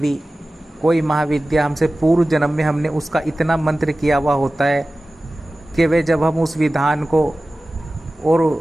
कोई महाविद्या हमसे पूर्व जन्म में हमने उसका इतना मंत्र किया हुआ होता है कि वे जब हम उस विधान को और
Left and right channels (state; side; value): normal; both; correlation 0.96